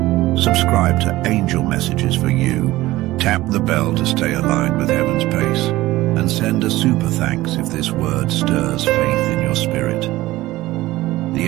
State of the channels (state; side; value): quieter; left; 17.5 dB